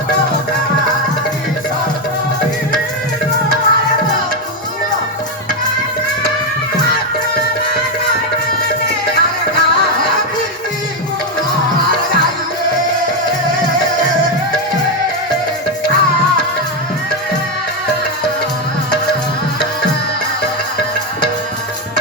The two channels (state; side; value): normal; both; correlation 0.06